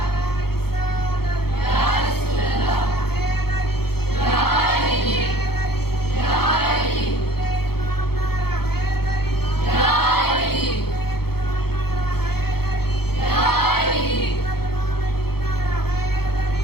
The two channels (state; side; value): late; right; 0.95 ms